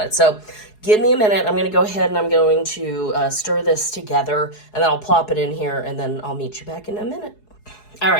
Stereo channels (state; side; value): late; right; 4.7 ms